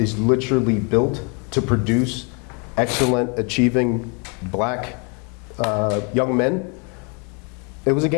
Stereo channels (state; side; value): quieter; right; 34.4 dB